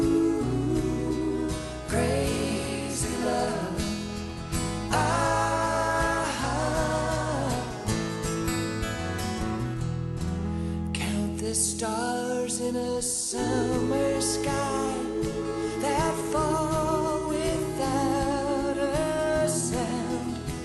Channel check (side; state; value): both; identical; correlation 1.00